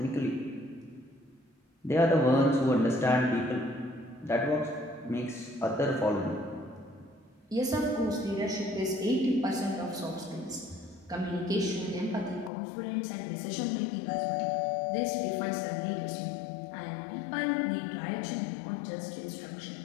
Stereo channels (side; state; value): right; drops out; at 12.5 s